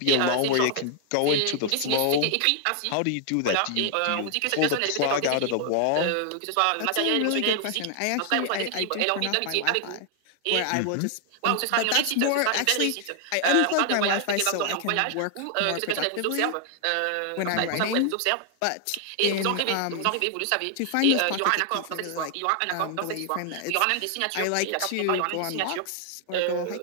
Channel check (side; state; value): both; different; correlation 0.00